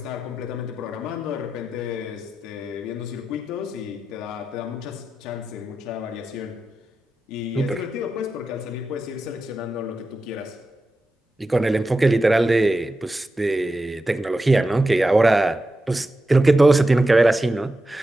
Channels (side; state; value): both; normal; correlation 0.90